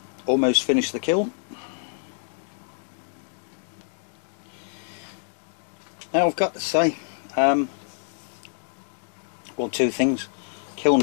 Almost finished the kiln. Now I've got to say, well, two things. Kiln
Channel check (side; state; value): right; silent; digital silence